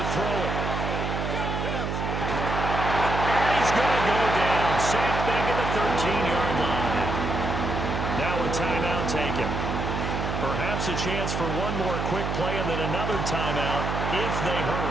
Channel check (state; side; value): noise; right; hum, 2 dB below the sound